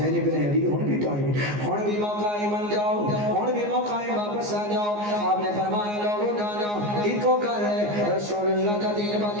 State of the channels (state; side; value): late; left; 14 ms